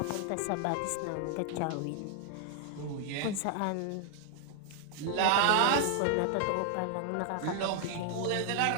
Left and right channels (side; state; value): both; different; correlation 0.00